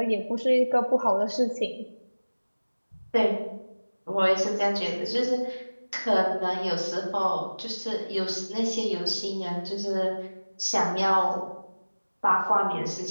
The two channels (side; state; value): both; inverted; correlation -1.00